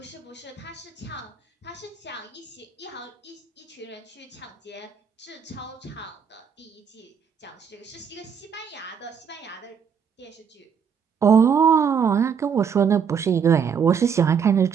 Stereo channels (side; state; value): left; quieter; 7.0 dB